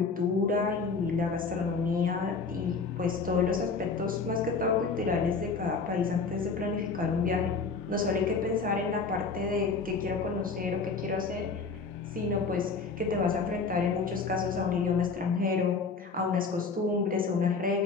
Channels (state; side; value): quieter; right; 4.6 dB